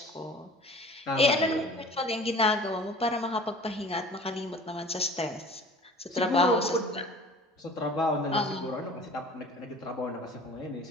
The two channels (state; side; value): normal; both; correlation 0.45